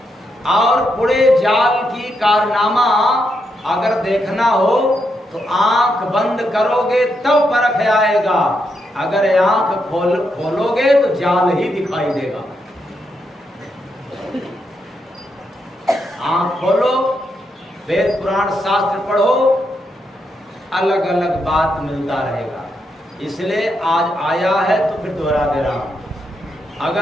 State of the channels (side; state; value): both; normal; correlation 0.81